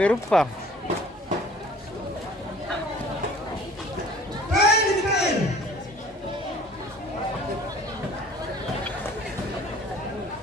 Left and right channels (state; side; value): normal; both; correlation 0.51